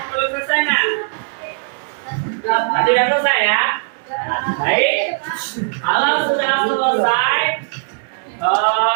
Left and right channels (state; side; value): silent; left; 67 dB below the other